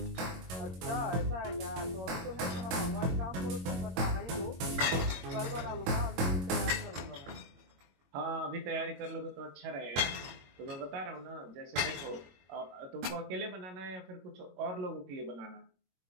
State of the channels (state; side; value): late; left; 22 ms